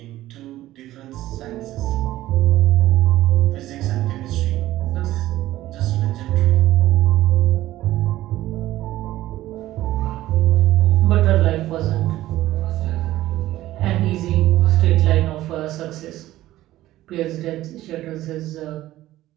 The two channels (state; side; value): quieter; left; 15.2 dB